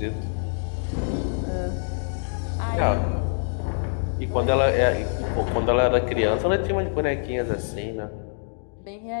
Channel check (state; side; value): silent; right; digital silence